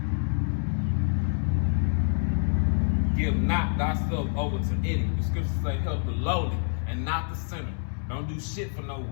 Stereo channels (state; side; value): silent; right; 60 dB below the other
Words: Give not thyself over to any. The scriptures say help the lowly and not the sinner. Don't do shit for no